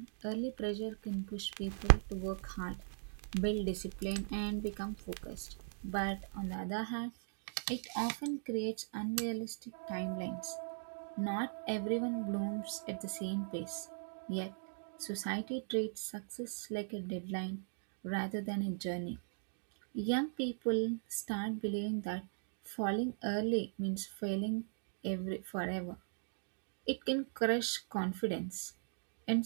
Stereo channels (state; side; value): silent; left; digital silence